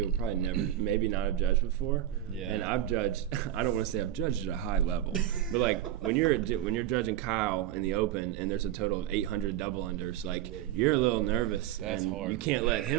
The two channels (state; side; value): quieter; left; 12.3 dB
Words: probably never, maybe not have judged before. Yeah. And I've judged. I don't want to say I've judged at a high level, but like when you're judging Kyle in the open and there's a total of 800 double unders, like you're a little nervous. That's and hard. You can't let